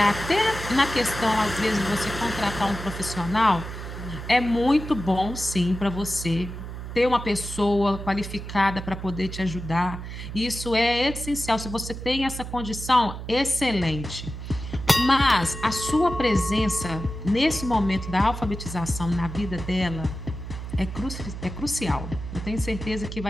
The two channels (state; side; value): noise; right; hum, 9 dB below the sound